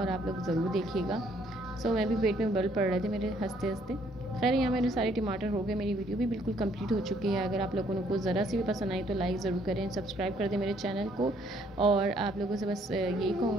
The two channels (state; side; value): normal; both; correlation 0.66